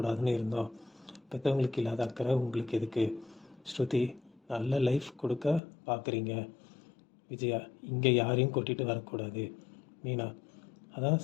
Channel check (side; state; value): right; drops out; at 5.6 s